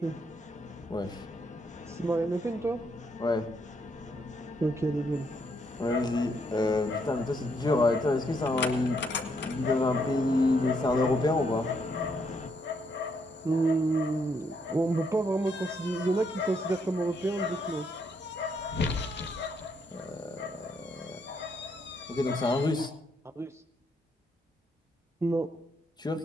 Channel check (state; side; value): normal; both; correlation 0.74